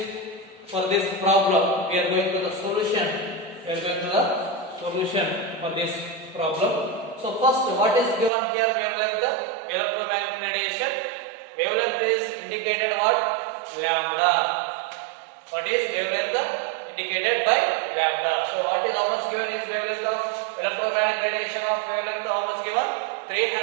for this problem we are going to the solution. For this problem. So first, what is given here? Wavelength, electromagnetic radiation. Wavelength is indicated what? Lambda. What is wavelength? Indicated by lambda. So what is how much given is wavelength of electromagnetic radiation of wavelength? How much given?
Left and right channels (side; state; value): left; drops out; at 8.3 s